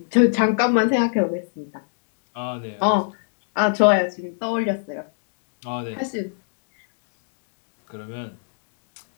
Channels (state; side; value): silent; right; digital silence